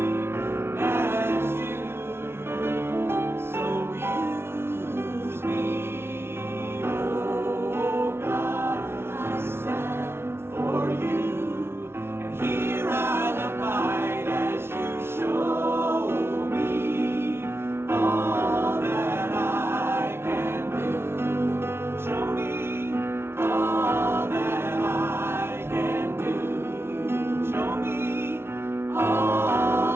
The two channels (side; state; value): left; late; 0.12 ms